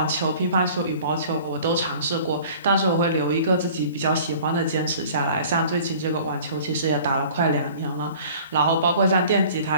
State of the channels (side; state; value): both; inverted; correlation -0.47